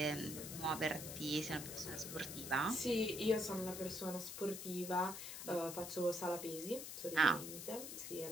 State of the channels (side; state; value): left; noise; hiss, 8 dB below the sound